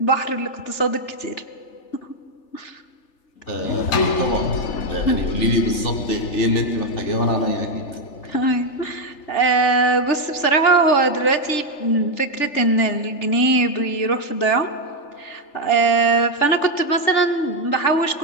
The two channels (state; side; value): late; right; 3.4 ms